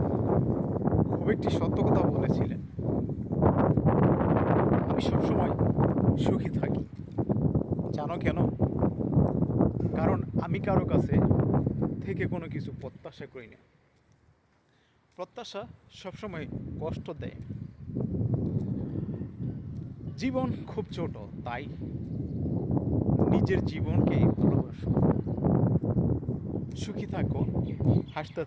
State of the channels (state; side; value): identical; both; correlation 1.00